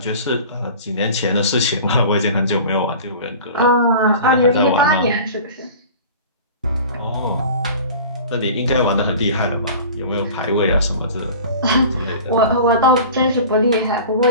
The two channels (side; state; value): both; inverted; correlation -0.39